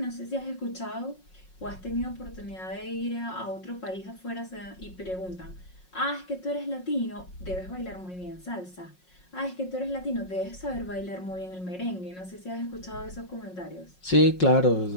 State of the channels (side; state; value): right; late; 5.5 ms